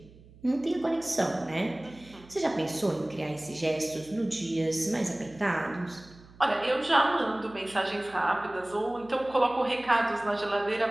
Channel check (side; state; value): right; noise; hum, 23 dB below the sound